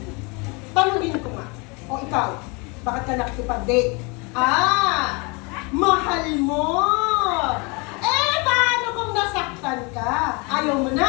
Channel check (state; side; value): quieter; right; 29.7 dB